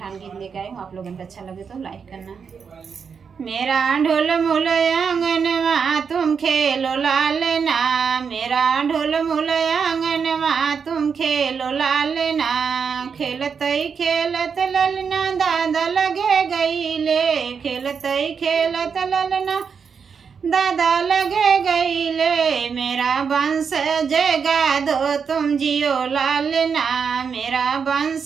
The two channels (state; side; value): quieter; left; 6.2 dB